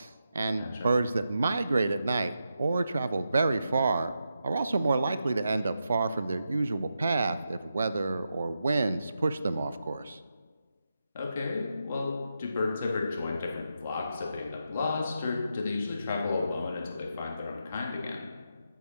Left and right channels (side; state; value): both; inverted; correlation -0.86